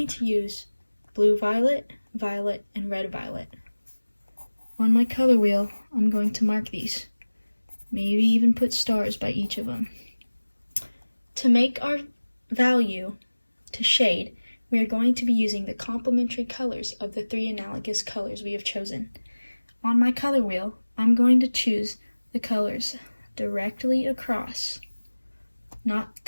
to use blue violet, violet, and red violet. On my color wheel, I'm going to mark these. Maybe even put stars by each of them. To make our value to shade, we are going to be using the complementary colors of the 3 analogous colors we have chosen. On my color wheel, I'm going to choose the colors directly across, not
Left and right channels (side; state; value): both; inverted; correlation -1.00